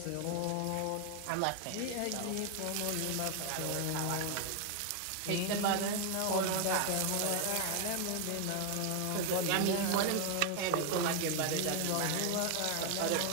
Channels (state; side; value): different; both; correlation 0.01